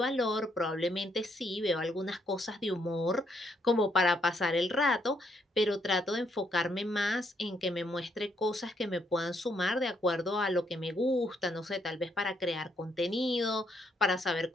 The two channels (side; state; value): both; normal; correlation 0.74